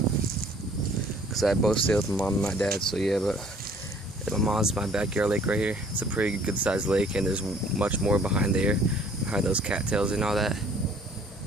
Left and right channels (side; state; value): both; normal; correlation 0.56